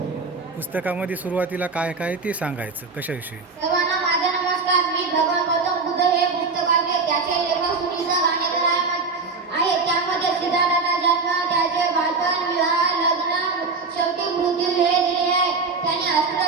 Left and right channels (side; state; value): left; quieter; 4.4 dB